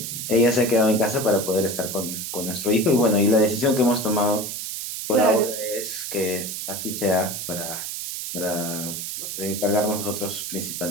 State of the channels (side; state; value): right; noise; hiss, 5 dB below the sound